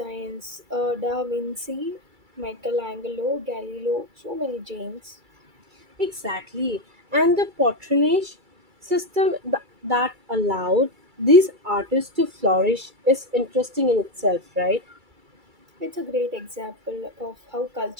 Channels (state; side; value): late; left; 2.3 ms